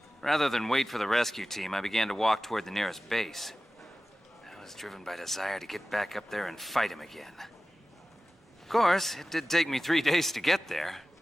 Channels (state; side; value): normal; both; correlation 0.96